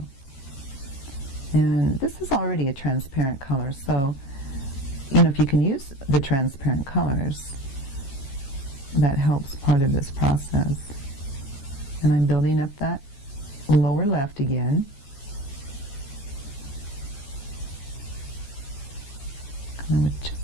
And this is already a transparent color, so if you can use the transparent colors, that helps part of this process. And I'm building up that lower left again. Come in with just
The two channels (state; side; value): late; right; 15 ms